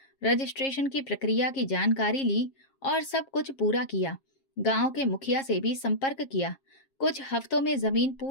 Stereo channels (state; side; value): late; right; 7.4 ms